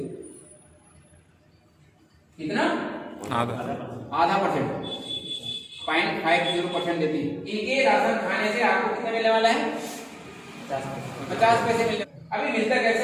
कितना? आधा %, 0.50% देती है। इनके राशन खाने से आपको कितना मिलने वाला है? 50 पैसे मिलने। अभी मिलता कैसे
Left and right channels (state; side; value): identical; both; correlation 1.00